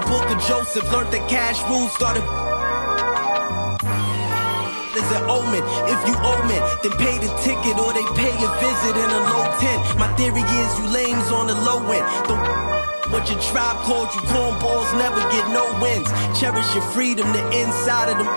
book of Joseph. Learned the cash rules, started is an omen. If you owe me, then pay the ticket or they pay a visit in a low tent. My theory is you lames on the low end. What your tribe called you cornballs never get no wins. Cherish your freedom, the inside of them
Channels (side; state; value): both; inverted; correlation -1.00